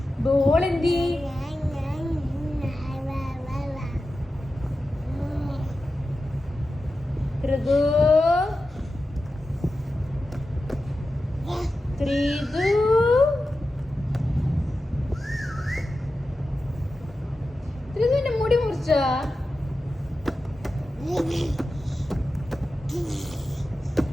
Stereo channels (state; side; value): normal; both; correlation 0.92